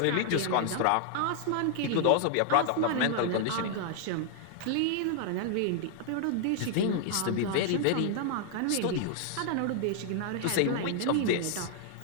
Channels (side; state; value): both; different; correlation 0.00